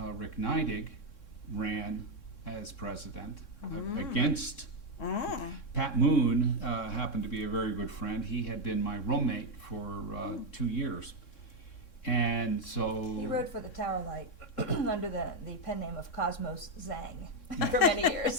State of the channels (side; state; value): right; late; 3.6 ms